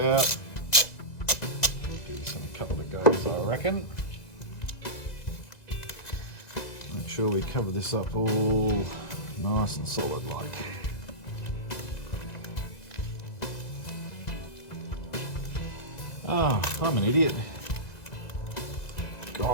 Give this a couple of goes, I reckon. Make sure we cover this up all nice and solid like. Oh, I'm an idiot.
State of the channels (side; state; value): right; late; 2.0 ms